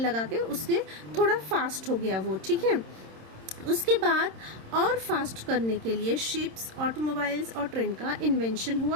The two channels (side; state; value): left; late; 26 ms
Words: लगा के उसके थोड़ा फास्ट हो गया वो, ठीक है। उसके बाद और फास्ट करने के लिए शिप्स, ऑटोमोबाइल्स और ट्रेन का इन्वेंशन